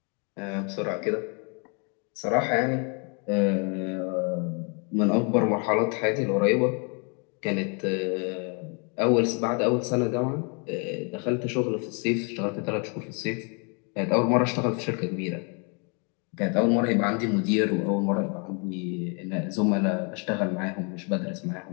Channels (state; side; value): quieter; right; 35.8 dB